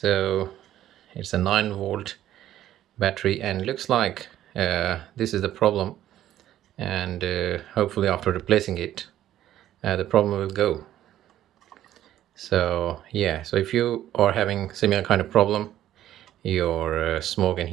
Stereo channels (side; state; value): left; quieter; 12.6 dB